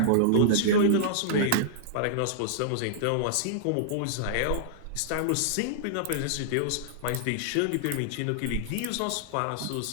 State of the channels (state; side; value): different; both; correlation -0.01